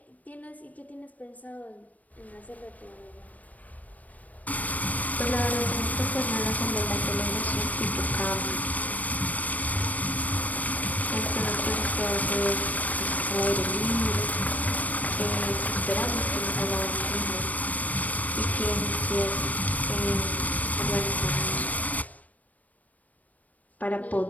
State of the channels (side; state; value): right; late; 0.074 ms